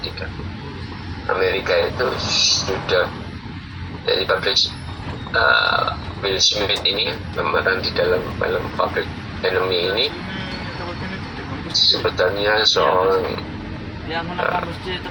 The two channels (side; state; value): both; identical; correlation 1.00